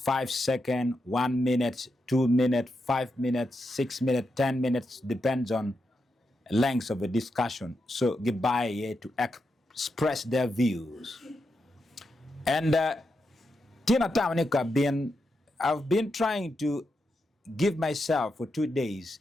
seconds, 1 minute, 2 minutes, 5 minutes, 6 minutes, 10 minutes, depends on length of a discussion. So goodbye here to express their views. And Tina Tamanika I've been trying to give myself for 2 days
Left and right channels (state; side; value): normal; both; correlation 0.85